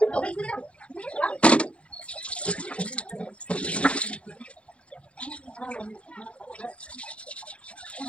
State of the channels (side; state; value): right; late; 0.061 ms